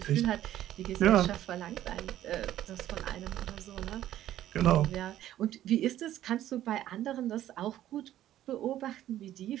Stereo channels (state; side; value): quieter; left; 12.8 dB